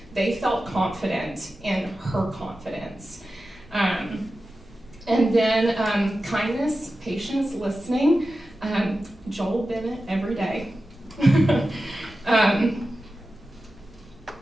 they felt confident in her confidence. And then kindness, patience, listening. Joel Bennett every day.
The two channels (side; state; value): both; normal; correlation 0.93